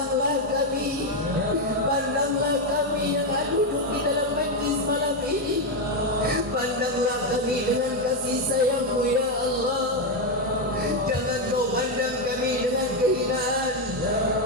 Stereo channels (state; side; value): normal; both; correlation 0.05